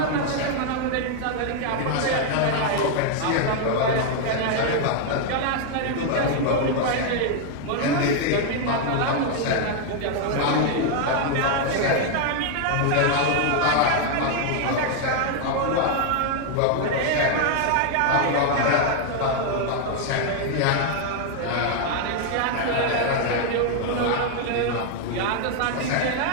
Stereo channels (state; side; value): different; both; correlation 0.00